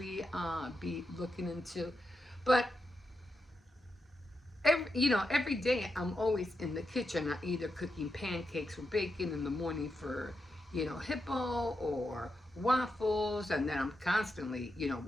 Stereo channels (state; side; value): normal; both; correlation 0.86